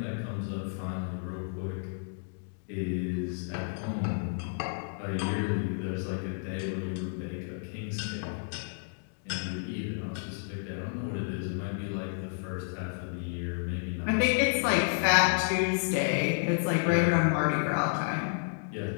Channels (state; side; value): silent; right; digital silence